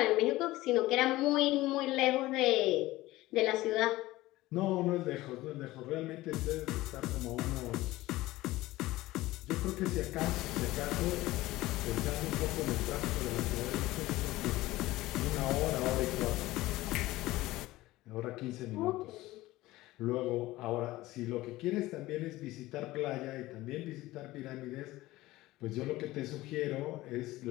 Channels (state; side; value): quieter; right; 17.9 dB